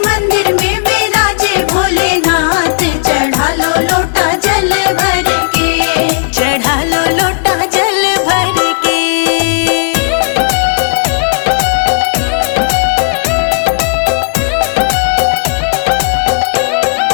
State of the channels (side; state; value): right; silent; digital silence